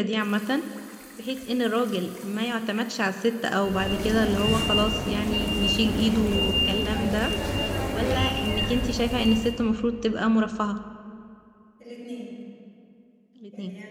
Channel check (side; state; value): both; identical; correlation 1.00